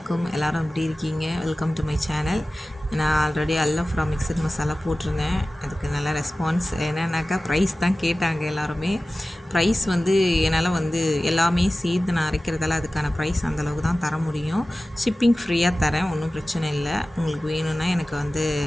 எல்லோரும் எப்படி இருக்கீங்க? Welcome to my channel. நான் ஆல்ரெடி அல்லஃப்ரா மிக்சட் மசாலா போட்டிருந்தேன். அதுக்கு நல்ல ரெஸ்பான்ஸ். என்னன்னாக்கா ப்ரைஸ் தான் கேட்டாங்க எல்லாருமே. ப்ரைஸ் என்னால் எல்லாமே சேர்த்து நான் அரைக்கிறதால அதுக்கான ப்ரைஸ் அந்தளவுக்கு தான் தர முடியும். ஷிப்பிங் ஃப்ரீயாக தரேன், ஒன்றும் பிரச்சனை இல்லை. உங்களுக்கு வேணும்னா எனக்கு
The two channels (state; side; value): normal; both; correlation 0.96